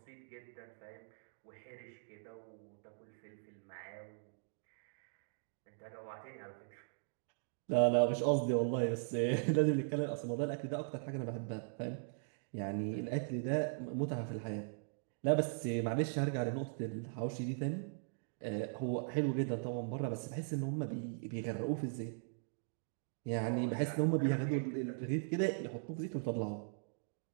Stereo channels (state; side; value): silent; left; digital silence